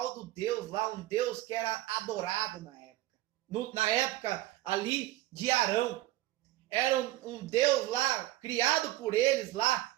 do Deus lá, um Deus que era adorado na época. Na época ali de Arão. Era um Deus lá, criado por eles lá,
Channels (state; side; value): quieter; left; 16.5 dB